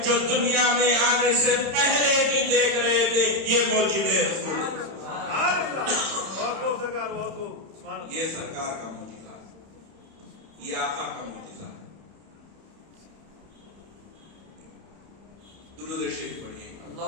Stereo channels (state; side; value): late; left; 31 ms